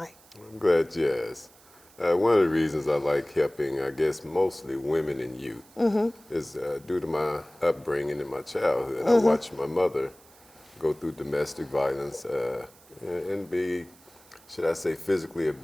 I'm glad you asked. One of the reasons I like helping, I guess, mostly women and youth is due to my upbringing in my childhood. I watched my mother go through domestic violence and be, should I say, physically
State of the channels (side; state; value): right; noise; hiss, 26 dB below the sound